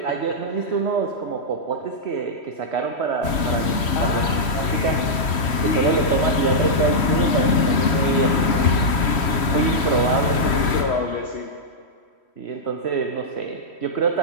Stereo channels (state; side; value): late; right; 3.1 ms